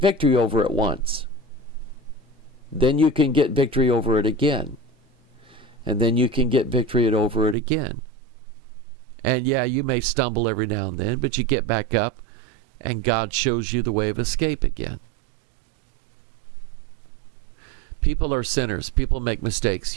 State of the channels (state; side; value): drops out; left; at 7.6 s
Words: over it once. Then you can get victory over it again. And then you can get victory over it again. And yeah, you may stumble every now and then, but you get back up and God shows you the way of escape again. People are sinners. People make mistakes.